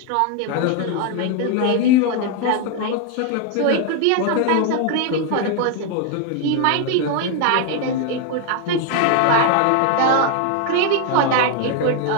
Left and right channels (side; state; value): both; different; correlation 0.00